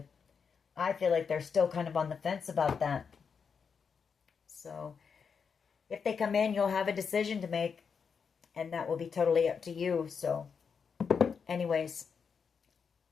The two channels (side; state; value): right; quieter; 6.1 dB